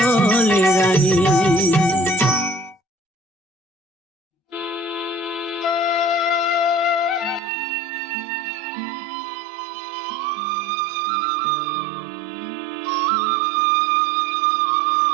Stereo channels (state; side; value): drops out; left; at 7.4 s